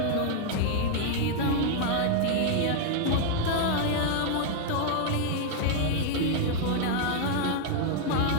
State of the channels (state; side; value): different; both; correlation 0.00